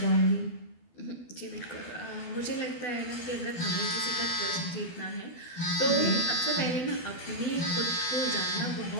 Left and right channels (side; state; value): right; late; 12 ms